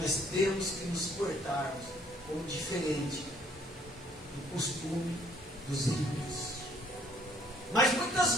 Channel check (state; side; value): normal; both; correlation 0.62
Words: temos que nos portarmos como diferente do costume dos ímpios. Mas muitas